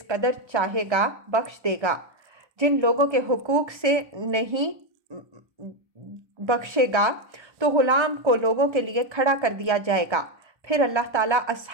قدر چاہے گا بخش دے گا، جن لوگوں کے حقوق سے نہیں بخشے گا تو غلام کو لوگوں کے لیے کھڑا کر دیا جائے گا۔ پھر اللہ تعالیٰ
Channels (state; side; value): late; left; 1.3 ms